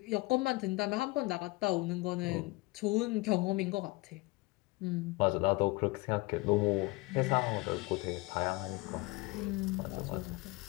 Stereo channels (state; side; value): quieter; right; 22.9 dB